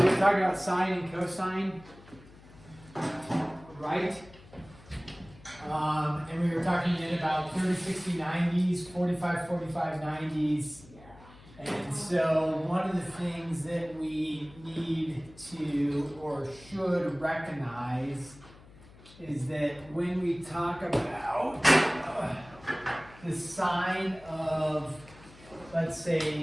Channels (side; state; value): left; noise; hum, 22 dB below the sound